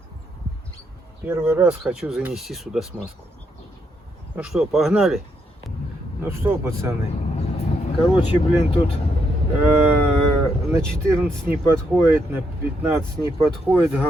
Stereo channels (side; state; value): both; normal; correlation 0.77